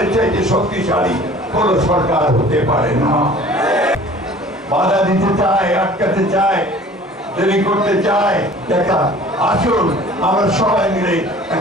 চাইতে শক্তিশালী কোন সরকার হতে পারে না। বাধা দিতে চায়, আটকাতে চায়, দেরি করতে চায়। দেখা আসুন আমরা সবাই মিলে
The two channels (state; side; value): normal; both; correlation 0.47